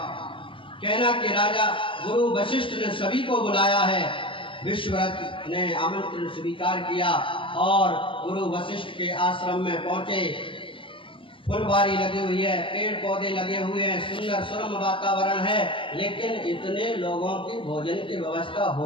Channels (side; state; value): right; late; 0.25 ms